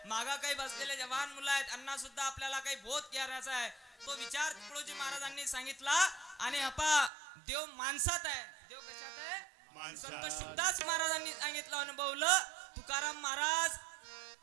मागा काही बसलेले जवान मुलं आहेत, यांना सुद्धा आपल्याला काही बोध करायचा आहे. तो विचार तुकडोजी महाराजांनी सांगितला. आणि देव माणसात आहे. देव कशात आहे? संत शुकदास महाराजांनी सांगितलं, अनुभवलं. तुकाराम महाराज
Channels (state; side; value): drops out; left; at 7.1 s